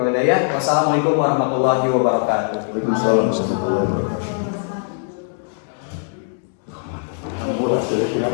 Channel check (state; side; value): silent; right; 64 dB below the other